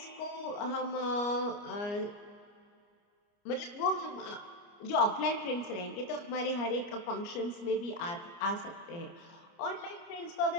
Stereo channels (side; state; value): right; late; 29 ms